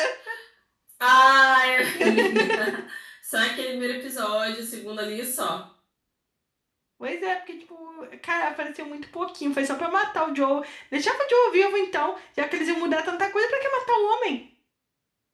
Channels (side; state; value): both; identical; correlation 1.00